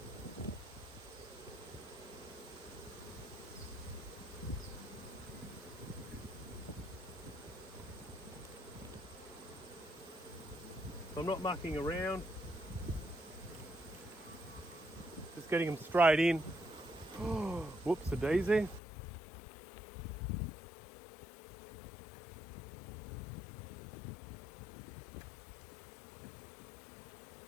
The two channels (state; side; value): drops out; right; at 18.8 s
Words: So I'm not mucking around. Just getting them straight in. Whoops, a daisy.